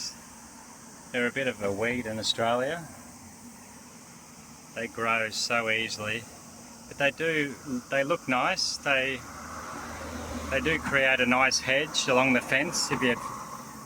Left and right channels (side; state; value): both; identical; correlation 1.00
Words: They're a bit of a weed in Australia. They grow so easily, but they look nice. They do create a nice hedge along the fence if you